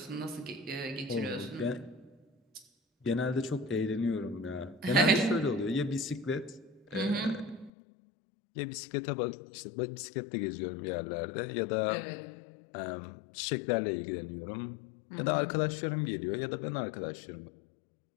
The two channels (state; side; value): drops out; right; at 7.7 s